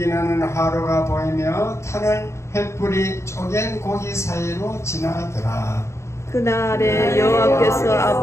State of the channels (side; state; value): right; late; 0.13 ms